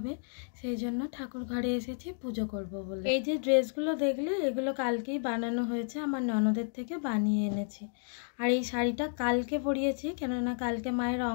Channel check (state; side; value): silent; right; digital silence